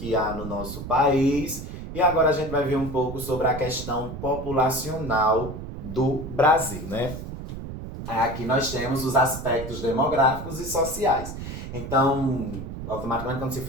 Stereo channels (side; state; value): right; noise; rumble, 9 dB below the sound